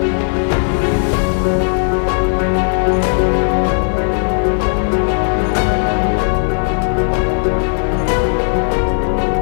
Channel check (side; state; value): right; silent; 57 dB below the other